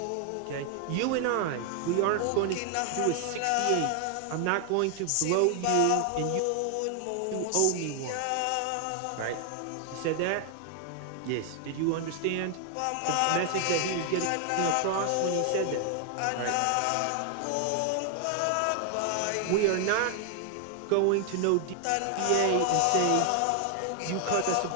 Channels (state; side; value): different; both; correlation 0.00